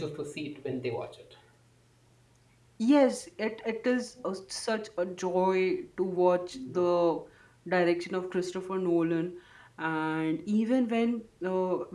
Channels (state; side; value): identical; both; correlation 1.00